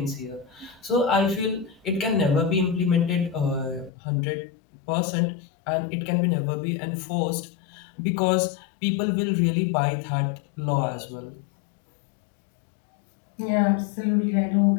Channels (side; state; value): right; drops out; at 3.9 s